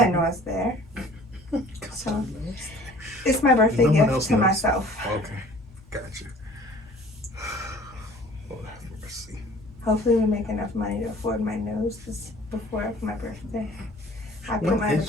know it's there. So it's my birthday gift to myself. Okay, gotcha. Lord have mercy. Hopefully we make enough money to afford my nose before my birthday. When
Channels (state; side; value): normal; both; correlation 0.50